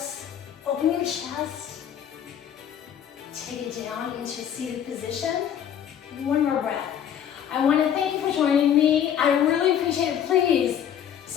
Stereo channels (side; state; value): right; quieter; 9.3 dB